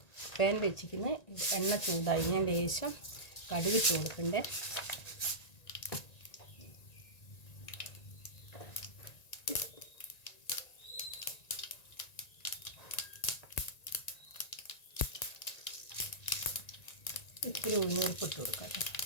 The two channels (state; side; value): late; right; 1.9 ms